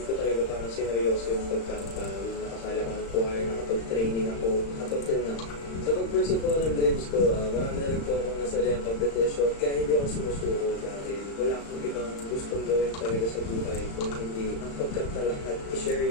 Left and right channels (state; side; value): late; right; 35 ms